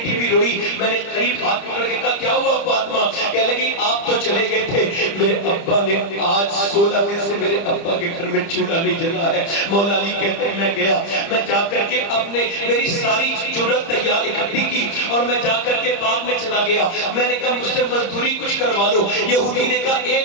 بھی روئی، میں نے قریب ہاتھ پکڑ کے کہا کیا ہوا فاطمہ؟ کہنے لگی آپ تو چلے گئے تھے، میرے ابا نے آج 16 دن سے میرے ابا کے گھر میں چولہا نہیں جلا ہے۔ مولا علی کہتے ہیں میں گیا، میں جا کر کے اپنے میری ساری جرت تیار اکٹھی کی اور میں جا کر کے باغ میں چلا گیا، میں نے کہا مجھ سے مزدوری کچھ کروا لو۔ یہودی نے کہا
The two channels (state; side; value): late; right; 30 ms